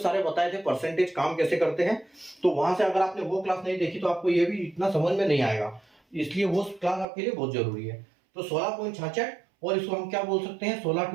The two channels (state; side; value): drops out; left; at 7.1 s